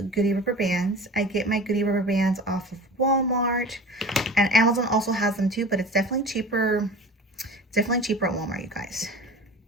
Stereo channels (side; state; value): both; normal; correlation 0.37